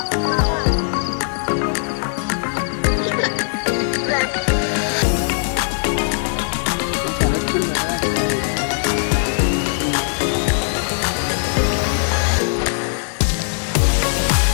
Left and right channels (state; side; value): silent; right; 64 dB below the other